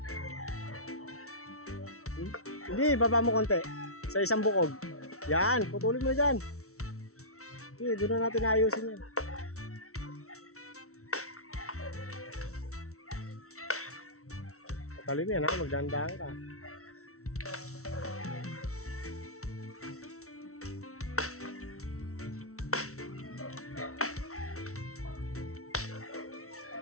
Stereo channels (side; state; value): right; late; 0.63 ms